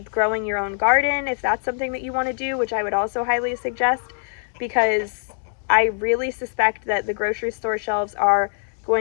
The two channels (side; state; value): right; silent; digital silence